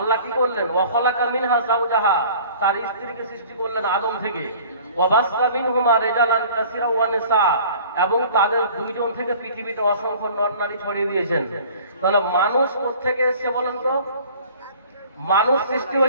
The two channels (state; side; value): inverted; both; correlation -0.48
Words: কি করলেন? ওয়া খালাকা মিনহা যাওজাহা, তার স্ত্রীকে সৃষ্টি করলেন আদম থেকে। ওয়া বাসসা মিনহুমা রিজালান কাসীরা ওয়া নিসা, এবং তাদের দুইজন থেকে পৃথিবীতে অসংখ্য নর নারী ছড়িয়ে দিয়েছেন। তাহলে মানুষ কোত্থেকে এসেছে বলেন তো? মানুষ সৃষ্টি